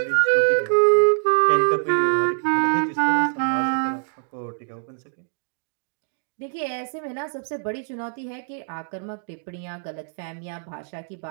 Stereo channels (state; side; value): silent; left; digital silence